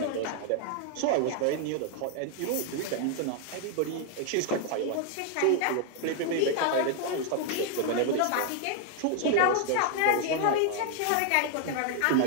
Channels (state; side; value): different; both; correlation 0.00